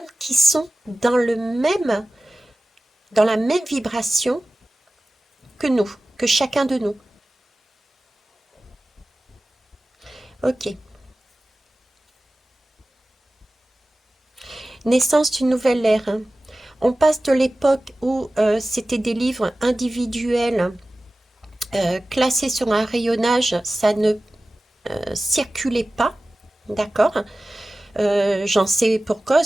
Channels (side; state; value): both; normal; correlation 0.96